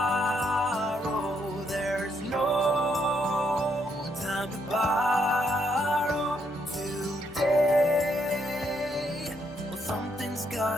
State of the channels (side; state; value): both; normal; correlation 0.75